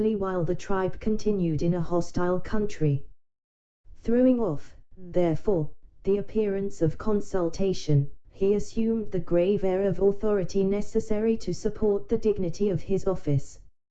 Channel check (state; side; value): identical; both; correlation 1.00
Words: while the tribe continued in a hostile country. Throwing off, therefore, the appearance of consultation, he assumed the grave air of authority necessary to support the dignity of his office.